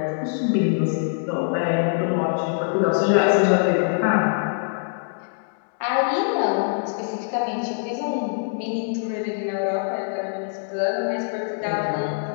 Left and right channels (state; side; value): silent; right; digital silence